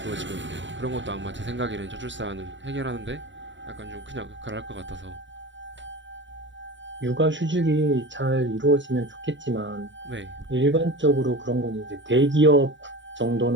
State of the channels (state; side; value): late; left; 0.54 ms